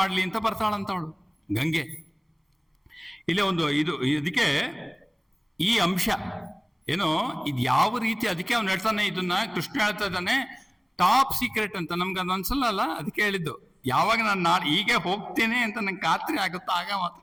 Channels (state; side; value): identical; both; correlation 1.00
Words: ಅಂತ ಬರ್ತಾಳಂತ ಅವಳು ಗಂಗೆ. ಇಲ್ಲೇ ಒಂದು ಇದಕ್ಕೆ ಈ ಅಂಶ ಏನೋ ಇದು ಯಾವ ರೀತಿ, ಅದಕ್ಕೆ ಅವ್ನು ಹೇಳ್ತಾನೆ, ಇದನ್ನ ಕೃಷ್ಣ ಹೇಳ್ತಾ ಇದ್ದಾನೆ ಟಾಪ್ ಸೀಕ್ರೆಟ್ ಅಂತ. ನಮ್ಗೆ ಅದು ಅನ್ಸಲ್ಲ ಅಲ್ಲ, ಅದಕ್ಕೆ ಹೇಳಿದ್ದು. ಯಾವಾಗ ನಾನು ಹೀಗೆ ಹೋಗ್ತೇನೆ ಅಂತ ನಂಗೆ ಖಾತ್ರಿ ಆಗುತ್ತೋ ಆಗ ಮಾತ್ರ